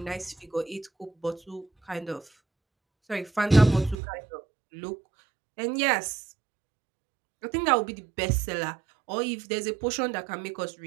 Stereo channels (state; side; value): drops out; left; at 4.0 s